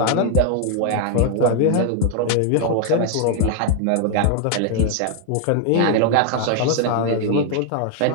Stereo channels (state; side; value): different; both; correlation 0.00